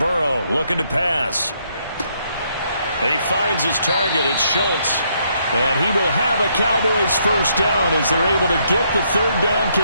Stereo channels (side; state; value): both; inverted; correlation -0.73